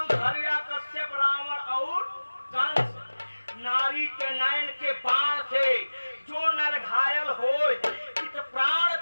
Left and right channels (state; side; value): inverted; both; correlation -1.00